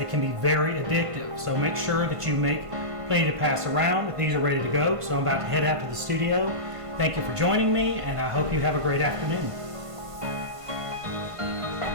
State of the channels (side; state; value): left; late; 1.5 ms